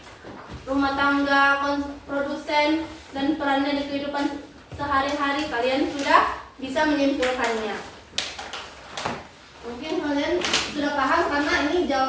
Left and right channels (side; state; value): both; identical; correlation 1.00